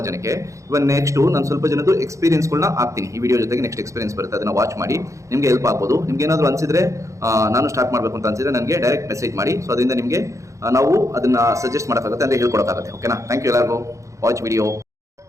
ಜನಕ್ಕೆ. ಇವಾಗ ನೆಕ್ಸ್ಟು ನಾನು ಸ್ವಲ್ಪ ಜನದ್ದು ಎಕ್ಸ್ಪೀರಿಯನ್ಸ್ಗಳನ್ನ ಹಾಕ್ತೀನಿ ಈ ವಿಡಿಯೋ ಜೊತೆಗೆ. ನೆಕ್ಸ್ಟ್ ಎಕ್ಸ್ಪೀರಿಯನ್ಸ್ ಬರುತ್ತೆ, ಅದನ್ನು ವಾಚ್ ಮಾಡಿ, ನಿಮಗೆ ಹೆಲ್ಪ್ ಆಗ್ಬೋದು. ನಿಮ್ಗೆ ಏನಾದರೂ ಅನಿಸಿದ್ರೆ, ನಾನು ಸ್ಟಾರ್ಟ್ ಮಾಡಬೇಕು ಅಂತ ಅನಿಸಿದ್ರೆ ನನಗೆ ಡೈರೆಕ್ಟ್ ಮೆಸೇಜ್ ಮಾಡಿ. ಸೊ ಅದರಿಂದ ನಿಮಗೆ ನಾವು ಅದನ್ನು ಸಜೆಸ್ಟ್ ಮಾಡೋಕ್ಕಾಗುತ್ತೆ, ಅಂದರೆ ಹೇಳ್ಕೊಡೋಕ್ಕಾಗುತ್ತೆ. ಓಕೆನಾ? ಥ್ಯಾಂಕ್ ಯು ಎಲ್ಲರಿಗೂ. Watch video.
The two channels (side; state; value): left; late; 0.15 ms